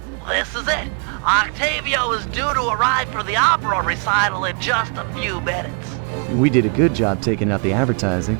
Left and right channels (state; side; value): quieter; left; 38.2 dB